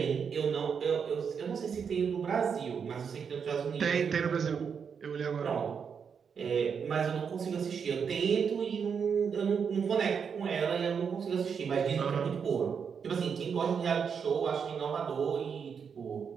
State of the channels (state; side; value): quieter; left; 6.6 dB